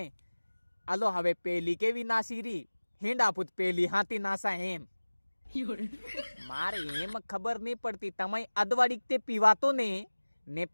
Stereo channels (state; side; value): inverted; both; correlation -1.00